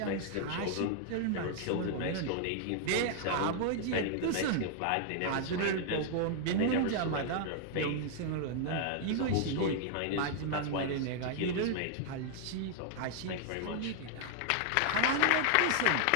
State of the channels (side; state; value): both; different; correlation 0.00